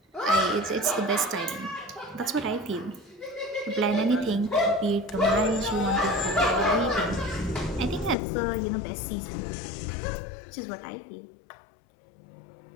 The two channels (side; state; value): right; drops out; at 8.2 s